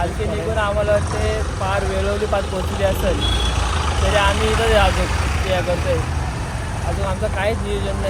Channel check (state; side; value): identical; both; correlation 1.00